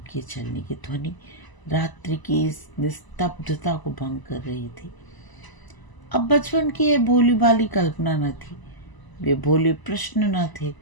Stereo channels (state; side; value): late; right; 1.0 ms